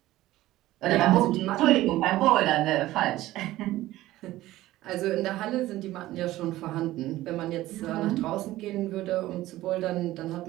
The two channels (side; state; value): left; quieter; 16.1 dB